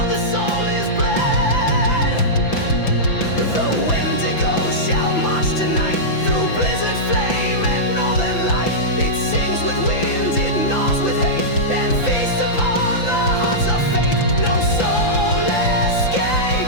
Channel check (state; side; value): late; right; 5.9 ms